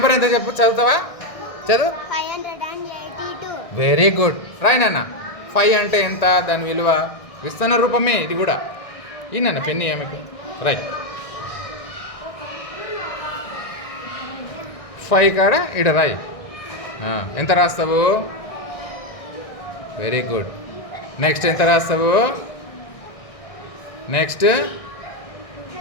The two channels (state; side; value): late; right; 1.6 ms